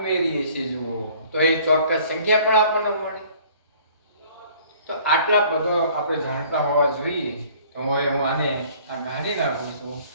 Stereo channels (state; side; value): inverted; both; correlation -0.54